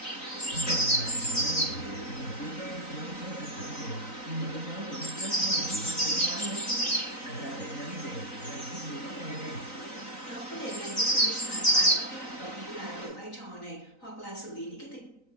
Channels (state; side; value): late; right; 3.9 ms